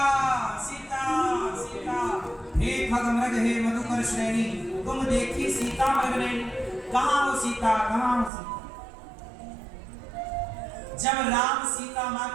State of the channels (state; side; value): drops out; left; at 8.3 s